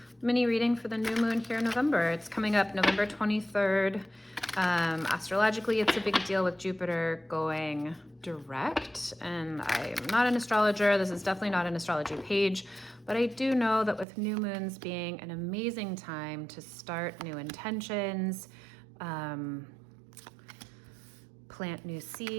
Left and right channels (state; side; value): drops out; left; at 14.1 s